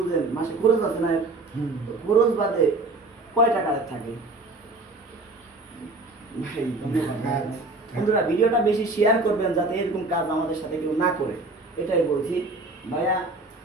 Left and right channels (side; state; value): left; quieter; 3.1 dB